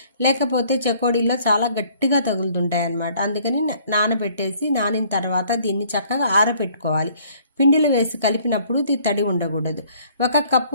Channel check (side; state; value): both; inverted; correlation -0.59